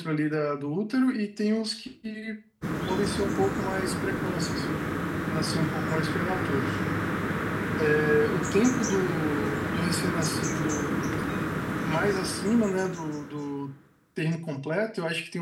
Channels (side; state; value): both; identical; correlation 1.00